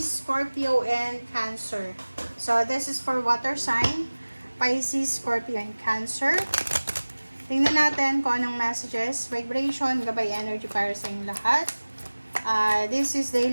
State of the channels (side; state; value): both; inverted; correlation -1.00